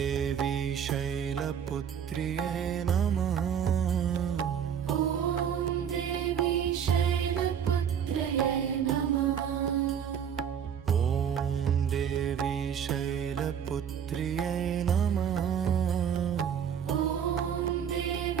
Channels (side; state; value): left; quieter; 8.2 dB